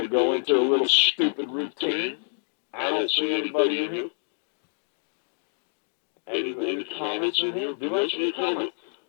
to go into a little stupid routine. I don't see anybody in here. Any comments in here? Do I see a comment?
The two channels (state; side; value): silent; right; digital silence